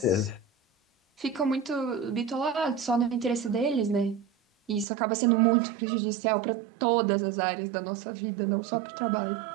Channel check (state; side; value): drops out; left; at 4.9 s